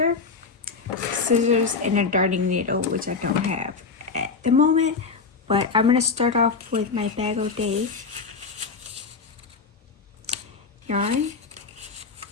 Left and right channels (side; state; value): right; quieter; 4.8 dB